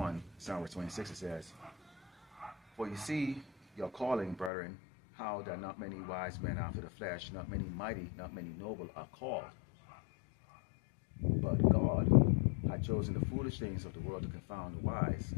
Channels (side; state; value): right; drops out; at 4.5 s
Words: verse 26. It says, "For you see your calling, brethren, how that not many wise men after the flesh, not many mighty, not many noble are called. But God had chosen the foolish things of the world to confound the wise,